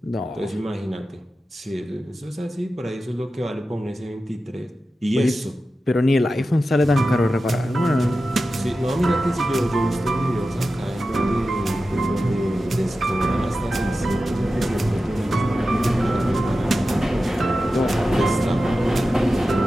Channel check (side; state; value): both; normal; correlation 0.93